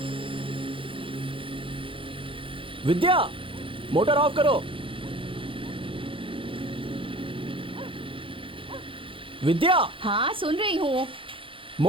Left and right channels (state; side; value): late; left; 0.25 ms